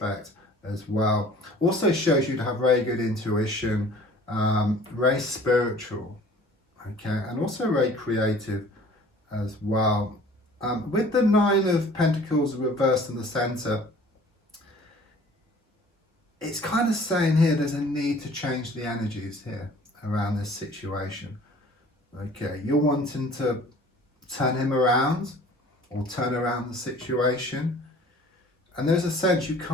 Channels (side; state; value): both; normal; correlation 0.50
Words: as well. Also shows you to have very good intuition, very spiritual, okay, and also very creative as well. With the 9 of Pentacles reversed in the centre, it's kind of saying here there's a need to change the energies here around this situation. Okay, you're wanting to turn him around or turn around the situation, and there's a sense you